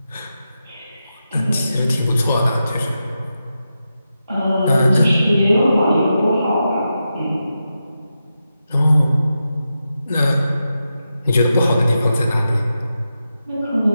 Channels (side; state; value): both; inverted; correlation -0.89